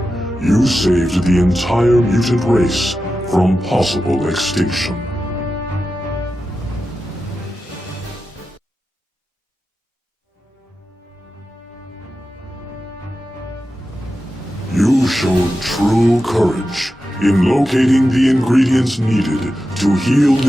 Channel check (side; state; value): both; normal; correlation 0.91